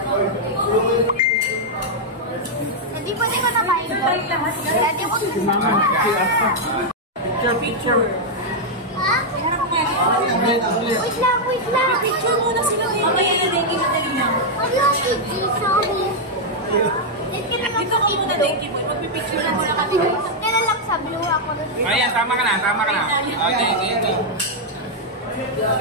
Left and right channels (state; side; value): normal; both; correlation -0.03